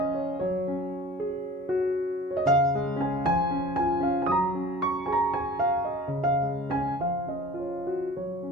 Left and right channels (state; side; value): normal; both; correlation 0.43